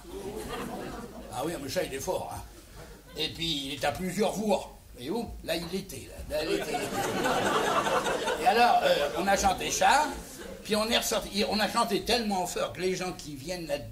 Ah oui, mais ça il est fort. Hein. Et puis il est à plusieurs voix. Et où? Là il était. Là, il était. Et alors, on a chanté ça, puis on est ressorti. On a chanté tellement fort que les gens qui viennent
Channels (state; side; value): identical; both; correlation 1.00